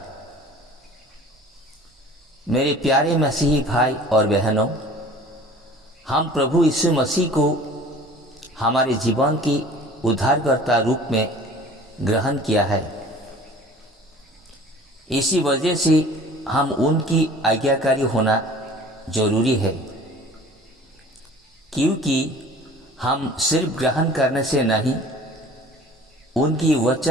मेरे प्यारे मसीही भाई और बहनों, हम प्रभु यीशु मसीह को हमारे जीवन की उद्धारकर्ता रूप में ग्रहण किया है। इसी वजह से हम उनकी आज्ञाकारी होना जरूरी है, क्योंकि हम सिर्फ ग्रहण करने से नहीं, उनकी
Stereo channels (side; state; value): both; normal; correlation 0.46